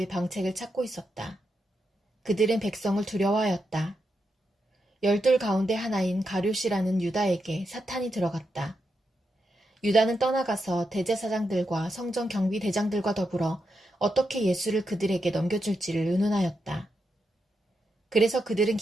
방책을 찾고 있었다. 그들은 백성을 두려워하였다. 12 가운데 하나인 가룟이라는 유다에게 사탄이 들어갔다. 유다는 떠나가서 대제사장들과 성전 경비대장들과 더불어 어떻게 예수를 그들에게 넘겨줄지를 의논하였다. 그래서 그들은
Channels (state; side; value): normal; both; correlation 0.85